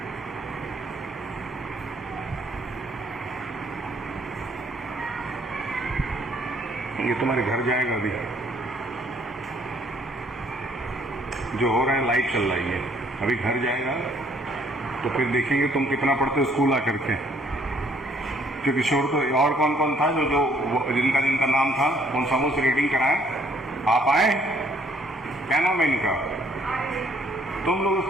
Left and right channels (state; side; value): normal; both; correlation 0.64